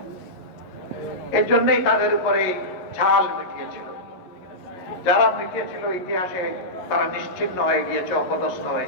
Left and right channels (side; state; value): right; late; 11 ms